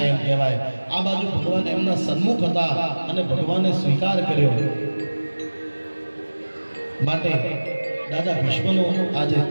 કહેવાય। આ બાજુ ભગવાન એમના સન્મુખ હતા અને ભગવાને સ્વીકાર કર્યો, માટે દાદા ભીષ્મનો આજે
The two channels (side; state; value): both; inverted; correlation -1.00